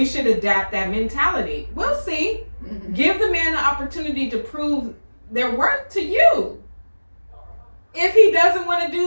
should adapt that mentality. We'll see. Mm-hmm. Give the man the opportunity to prove their worth to you. If he doesn't want to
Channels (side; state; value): both; inverted; correlation -1.00